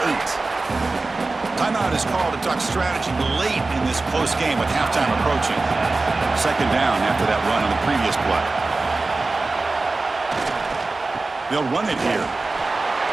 8. Timeout is called to talk strategy late in this close game with halftime approaching. 2nd down after that run on the previous play. They'll run it here.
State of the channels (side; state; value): left; quieter; 3.5 dB